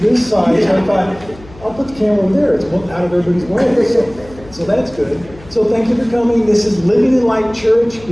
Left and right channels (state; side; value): noise; left; hum, 21 dB below the sound